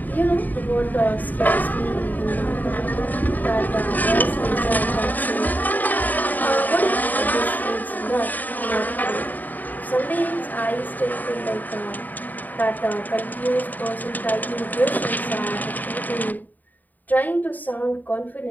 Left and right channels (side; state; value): right; late; 0.084 ms